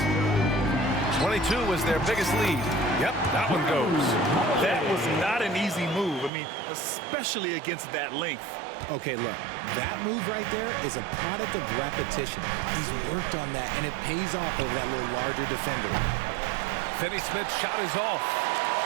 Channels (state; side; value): drops out; left; at 6.3 s